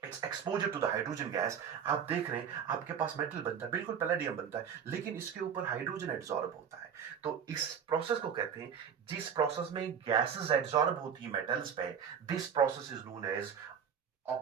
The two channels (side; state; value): left; quieter; 7.7 dB